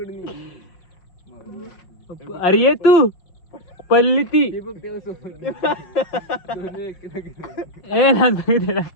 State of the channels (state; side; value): late; right; 5.5 ms